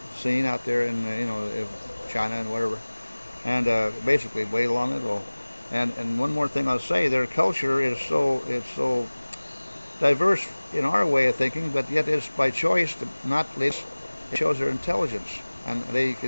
scene out there in China and whatever, and basically way long ago. And one more thing I'll say, their culture is so diverse in our way of thinking, but yet it's by choice to not lead. It shows their intelligence, and they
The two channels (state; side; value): inverted; both; correlation -1.00